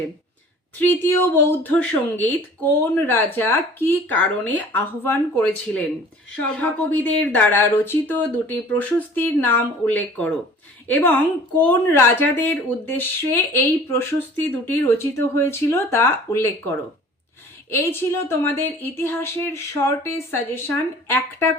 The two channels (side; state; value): both; normal; correlation 0.47